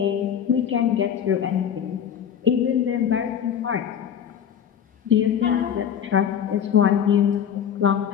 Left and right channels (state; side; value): quieter; right; 8.7 dB